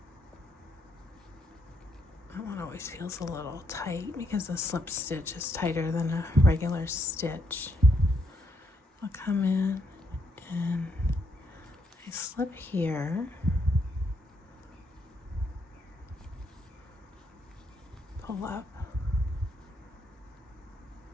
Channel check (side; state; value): both; normal; correlation 0.76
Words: That one always feels a little tight because the slip stitch is tighter than a regular stitch. I'll come in and I slip here. Pull up.